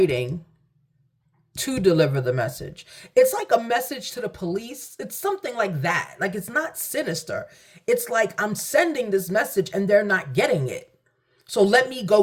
to deliver the message. It's like a message to the police. It's something like that. Like it's not sinister. It's like I'm sending this message and they're not getting it. So let me go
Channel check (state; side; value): identical; both; correlation 1.00